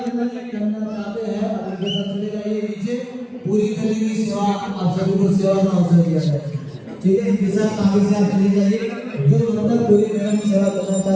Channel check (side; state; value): both; identical; correlation 1.00